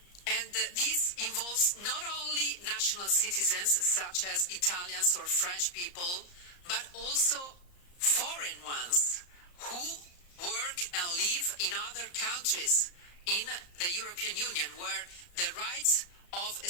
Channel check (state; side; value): late; right; 34 ms